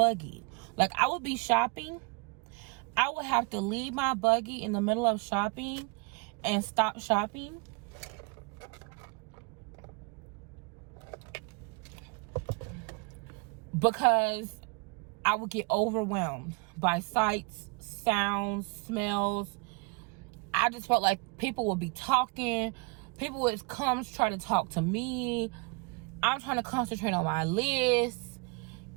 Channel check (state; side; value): quieter; left; 31.2 dB